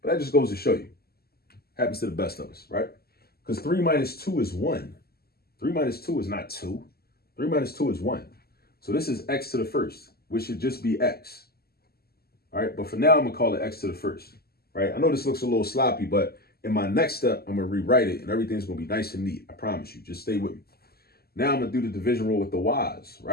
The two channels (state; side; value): late; right; 0.45 ms